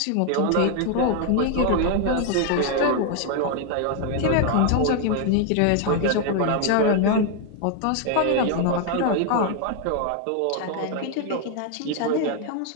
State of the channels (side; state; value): both; different; correlation 0.00